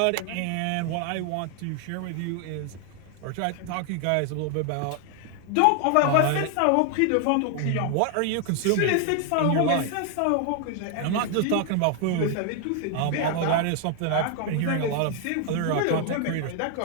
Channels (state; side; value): different; both; correlation 0.00